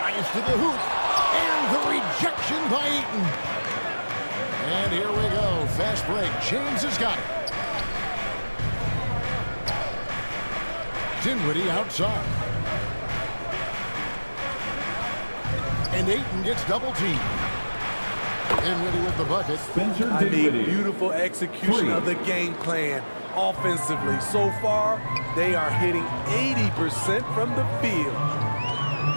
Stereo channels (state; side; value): inverted; both; correlation -1.00